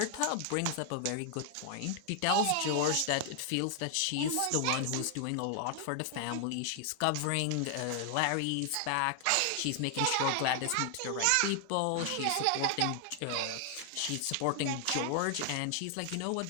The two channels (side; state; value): both; different; correlation 0.00